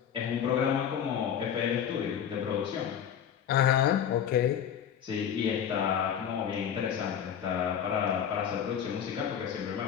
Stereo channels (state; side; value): quieter; right; 8.7 dB